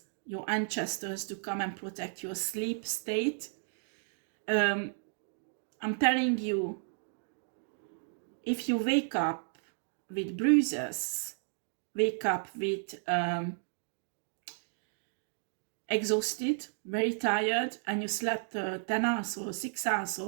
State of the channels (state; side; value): silent; left; digital silence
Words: your ancestors, to come and protect your sleep state. I'm telling you, if you wake up with bruises, wake up with exhausted, very tired, and you slept 10 hours or 6 hours,